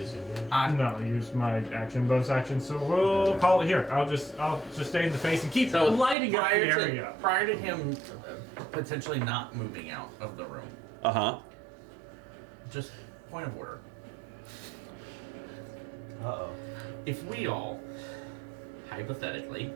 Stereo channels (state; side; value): drops out; left; at 6.2 s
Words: No, use my action, bonus action. So we'll call it here. I'll just stay in the face and keep lighting up the area. prior to him potentially not moving out of the room, just point of order. Uh-oh. If we all, hypothetically,